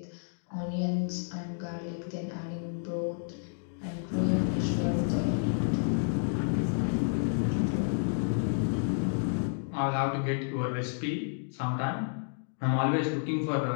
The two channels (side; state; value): right; silent; digital silence